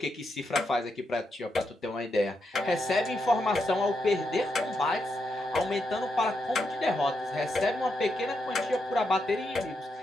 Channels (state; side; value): normal; both; correlation 0.83